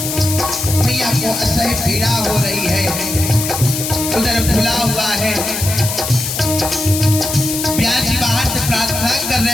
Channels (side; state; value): left; noise; hiss, 4 dB below the sound